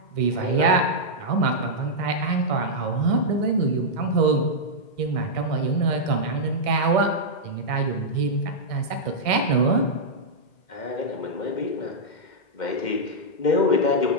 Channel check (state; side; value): late; right; 2.1 ms